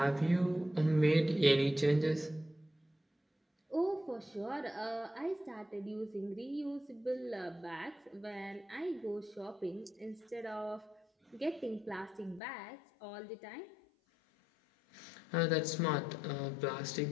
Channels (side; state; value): right; drops out; at 12.4 s